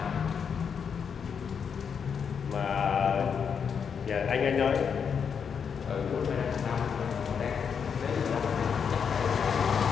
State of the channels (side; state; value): right; quieter; 6.8 dB